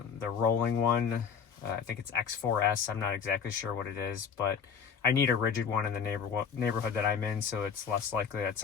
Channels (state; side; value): quieter; right; 6.7 dB